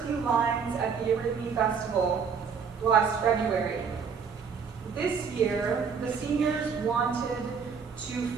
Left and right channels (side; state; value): left; quieter; 6.2 dB